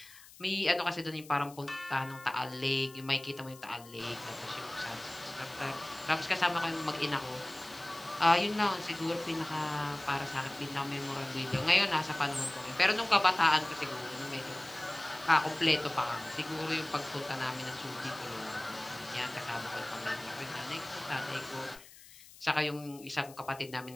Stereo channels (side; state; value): left; noise; hiss, 20 dB below the sound